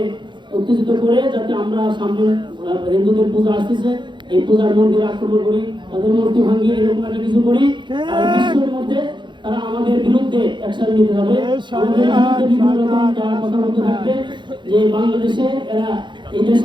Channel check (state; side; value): late; left; 0.23 ms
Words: উত্তেজিত করে যাতে আমরা সামনে হিন্দুদের পূজা আসতেছে এই পূজার মন্দিরে আক্রমণ করি, তাদের মূর্তি ভাঙি, এরকম একটা কিছু করি। আর বিশ্বের মধ্যে তারা আমাদের বিরুদ্ধে অ্যাকশন নিতে হবে, আমাদের বিরুদ্ধে বিভিন্ন রকম তারা কথা বলতে থাকবে যে বাংলাদেশে এরা এই দেশে